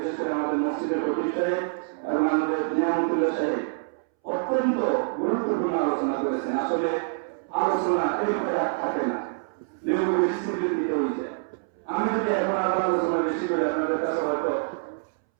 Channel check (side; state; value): left; silent; 61 dB below the other